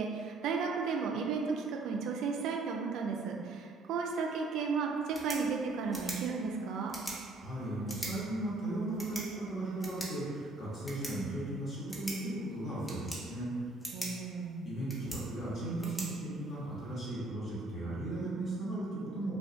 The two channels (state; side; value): quieter; left; 3.1 dB